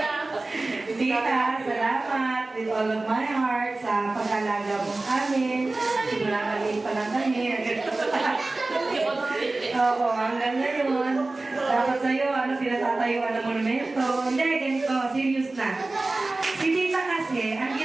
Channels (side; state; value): left; quieter; 3.1 dB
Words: Tita, salamat with all of my heart sa pag-alaga mo amin. Simula maliit pa lang kami. Oo, hanggang ngayon. Tapos sa'yo, pinatatayuan ng monumento. Hindi, ganito, serious na. Si Tita kasi, ang